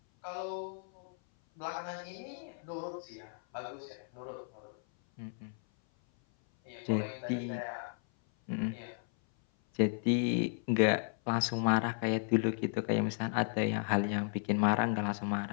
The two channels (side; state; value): right; silent; 55 dB below the other